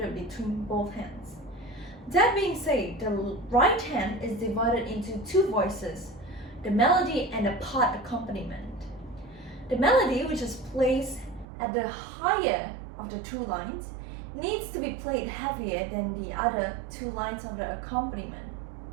between both hands. That being said, the right hand is divided into two voices, the melody and the part accompaniment. The melody, which is placed at the higher of the two lines, needs to be played heavier than the other two lines of the accompaniment.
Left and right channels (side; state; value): left; drops out; at 11.5 s